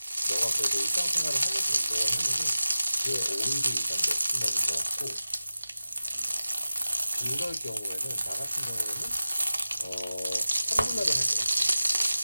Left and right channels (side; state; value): both; inverted; correlation -0.94